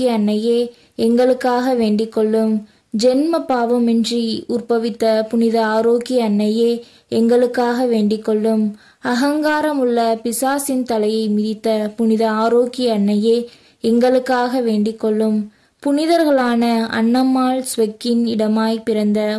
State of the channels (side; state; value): both; identical; correlation 1.00